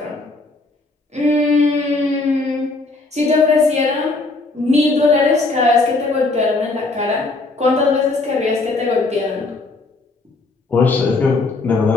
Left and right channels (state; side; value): quieter; right; 3.4 dB